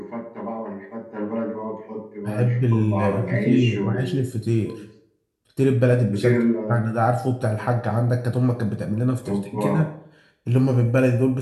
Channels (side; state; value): both; identical; correlation 1.00